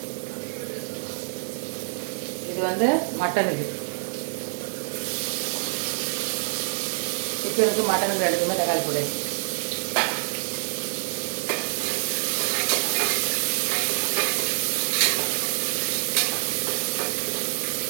இது வந்து மட்டனுக்கு, சிக்கனுக்கு மட்டனுக்கு ரெண்டுக்குமே தக்காளி போடு.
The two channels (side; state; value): left; silent; digital silence